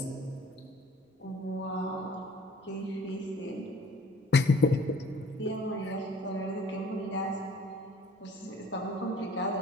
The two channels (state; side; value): normal; both; correlation 0.52